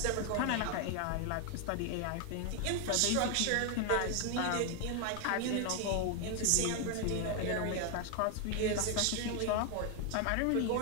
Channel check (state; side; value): different; both; correlation 0.01